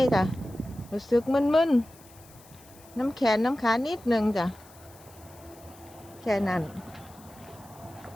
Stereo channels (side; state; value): left; noise; hiss, 24 dB below the sound